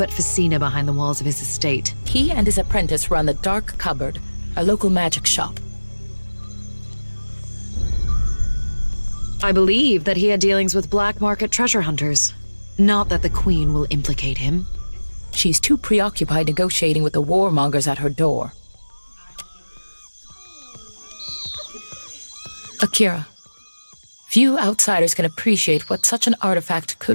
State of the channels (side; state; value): both; inverted; correlation -1.00